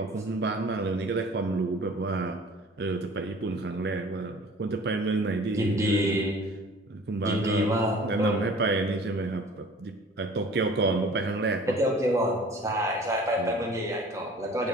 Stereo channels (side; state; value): both; normal; correlation 0.47